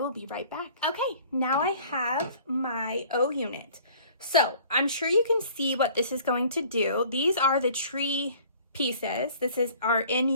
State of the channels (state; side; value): inverted; both; correlation -0.51